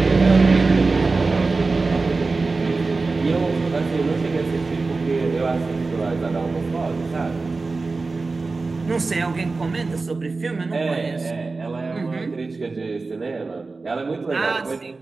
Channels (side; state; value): left; quieter; 3.8 dB